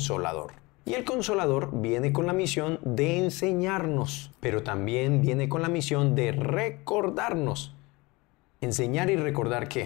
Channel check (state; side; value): quieter; right; 23.8 dB